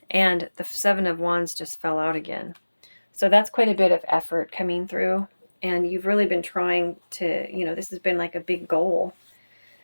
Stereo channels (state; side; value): inverted; both; correlation -1.00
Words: And the Seven of Wands just fell out again. So that's quite a bit of effort coming through. And you've really been trying to, this has been like a big goal.